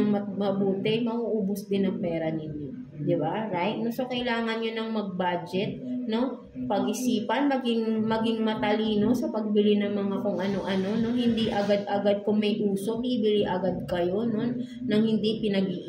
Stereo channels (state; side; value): identical; both; correlation 1.00